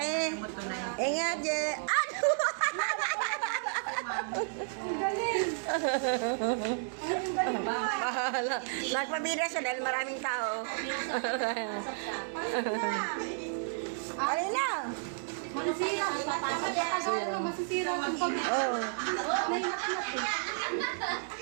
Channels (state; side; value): silent; left; digital silence